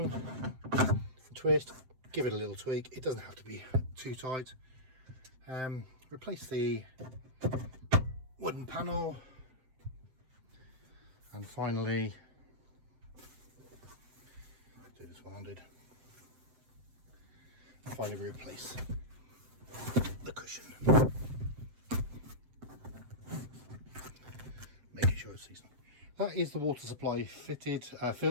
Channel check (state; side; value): late; left; 7.8 ms